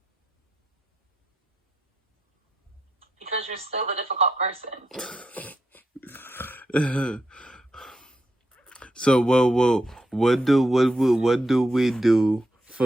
Because you're still the difficult person. So what do we do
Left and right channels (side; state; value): both; normal; correlation 0.83